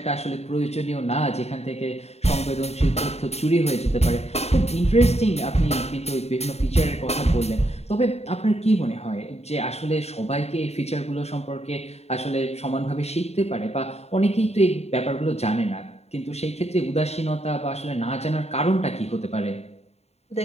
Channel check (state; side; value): late; right; 0.31 ms